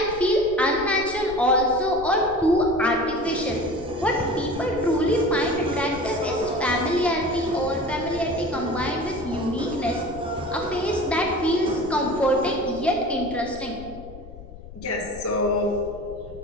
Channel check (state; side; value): noise; left; rumble, 16 dB below the sound